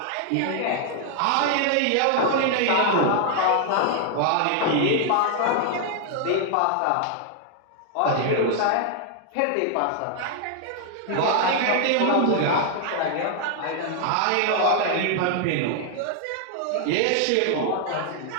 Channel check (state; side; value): different; both; correlation 0.00